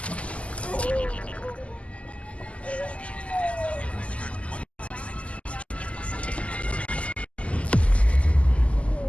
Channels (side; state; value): right; late; 0.062 ms